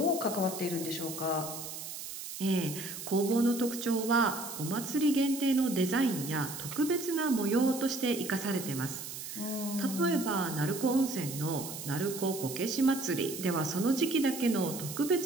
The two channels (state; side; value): noise; right; hiss, 9 dB below the sound